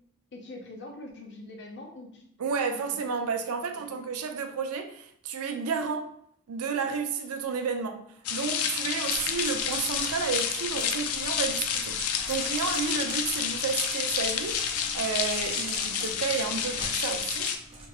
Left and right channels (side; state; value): both; normal; correlation -0.04